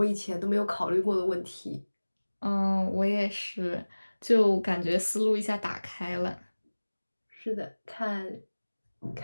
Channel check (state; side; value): inverted; both; correlation -1.00